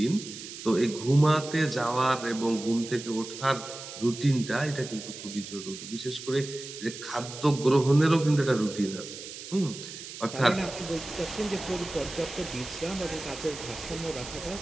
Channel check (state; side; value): noise; right; hiss, 11 dB below the sound